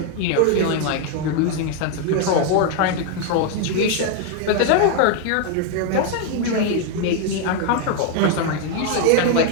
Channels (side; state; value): both; different; correlation 0.01